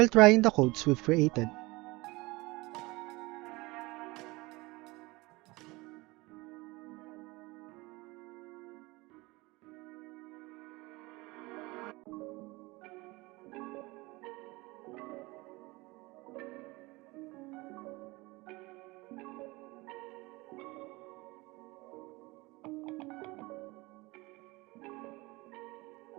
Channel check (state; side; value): quieter; left; 22.8 dB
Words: trying the codes we've created.